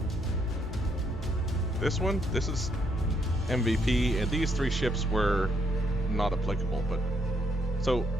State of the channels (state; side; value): normal; both; correlation 0.73